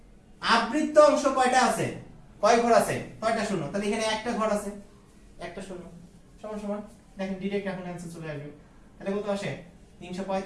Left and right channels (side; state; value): both; identical; correlation 1.00